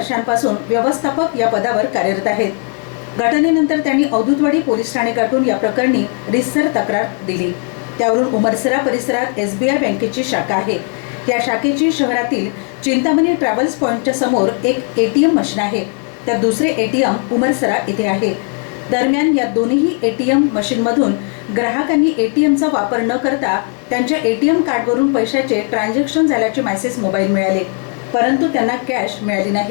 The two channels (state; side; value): quieter; right; 37.0 dB